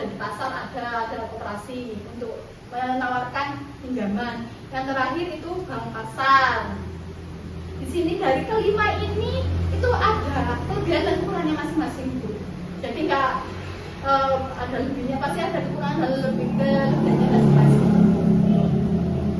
di pasar, ada koperasi untuk menawarkan pinjaman. Yang terakhir itu bank pasar. Di sini dari kelima ini itu ada kelebihan dan kekurangannya masing-masing Bu. Jadi nggak ada lebihnya, pasti ada kekurangan dan kelebihannya masing-masing.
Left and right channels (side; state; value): both; identical; correlation 1.00